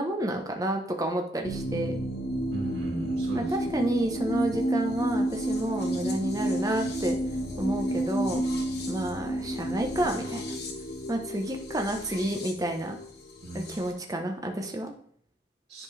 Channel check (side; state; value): both; normal; correlation 0.75